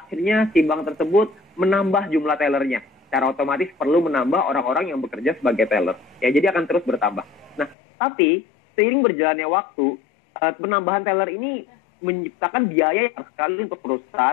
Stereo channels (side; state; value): right; drops out; at 7.8 s